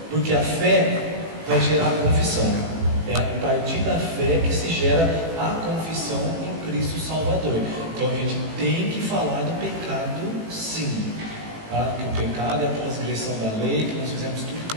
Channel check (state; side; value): late; left; 18 ms